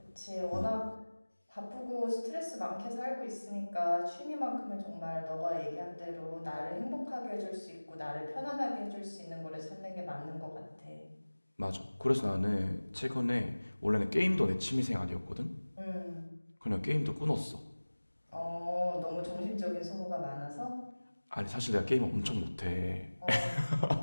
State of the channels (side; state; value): both; inverted; correlation -1.00